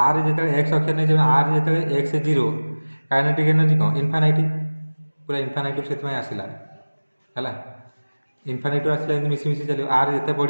ଆର୍ ଯେତେବେଳେ ଏକ୍ସ ଅକ୍ଷରେ ନେଇଛେ, ଆର୍ ଯେତେବେଳେ ଏକ୍ସ ଜିରୋ କାଇନେଟିକ୍ ଏନର୍ଜି କ'ଣ ଇନଫାନାଇଟ୍, ପୁରା ଇନଫାନାଇଟ୍ ସେଥିପାଇଁ ଆସିଲା ହେଲା। ଇନଫାନାଇଟ୍ ଆସିଲା ଏମିତି ମିଶି ମିଶି ଚାଲିବ, ଆର୍ ଯେତେ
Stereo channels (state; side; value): inverted; both; correlation -1.00